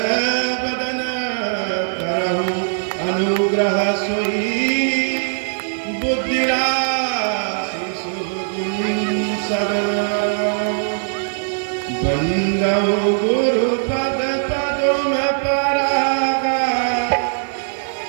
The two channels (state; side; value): silent; left; 59 dB below the other